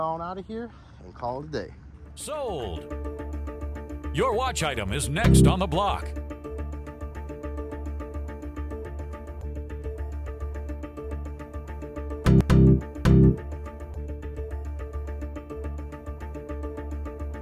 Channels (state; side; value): identical; both; correlation 1.00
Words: out of here and call it a day. Sold! Your watch item is next on the block.